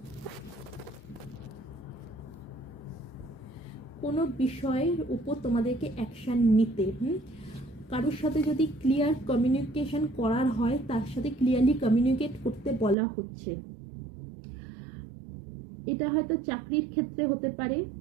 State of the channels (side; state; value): left; drops out; at 13.0 s